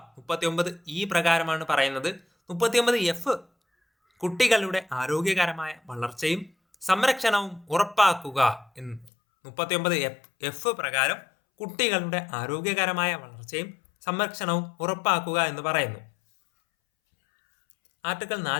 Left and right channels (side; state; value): right; drops out; at 9.1 s